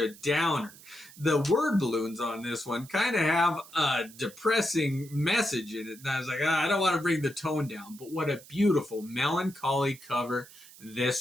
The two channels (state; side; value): noise; right; hiss, 20 dB below the sound